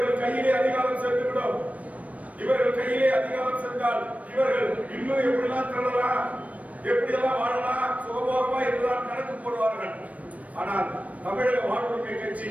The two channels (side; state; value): left; late; 0.068 ms